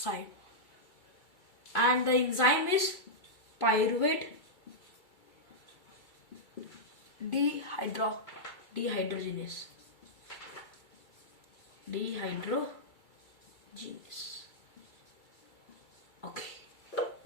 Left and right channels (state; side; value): late; right; 2.3 ms